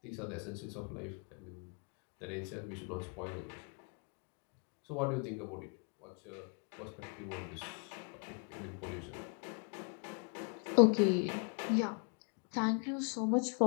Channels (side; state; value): right; quieter; 39.5 dB